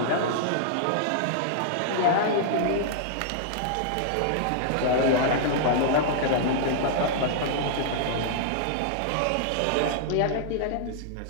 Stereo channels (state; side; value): different; both; correlation -0.01